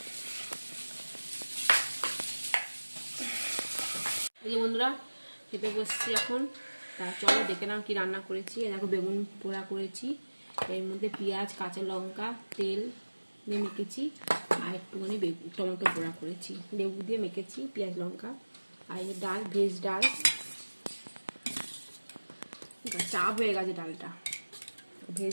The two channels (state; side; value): inverted; both; correlation -1.00